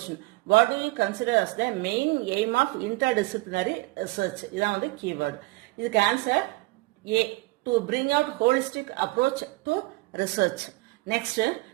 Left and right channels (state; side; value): quieter; left; 22.0 dB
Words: what do you consider as the main aim of interdisciplinary research? இதான் கீவேர்டு. இதுக்கு answer A, to bring out holistic approach to research. Next